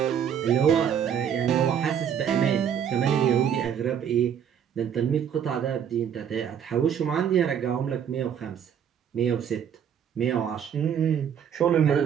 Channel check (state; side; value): quieter; left; 8.6 dB